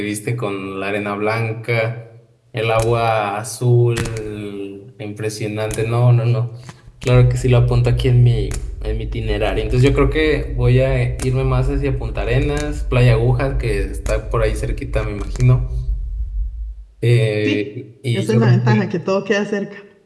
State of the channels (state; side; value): identical; both; correlation 1.00